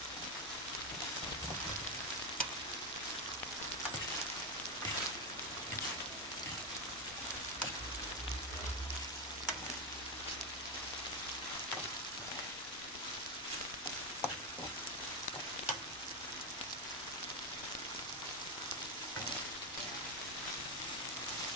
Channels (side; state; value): both; normal; correlation 0.09